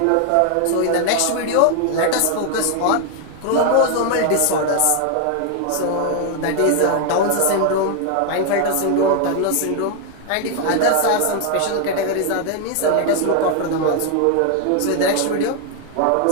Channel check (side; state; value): both; different; correlation 0.00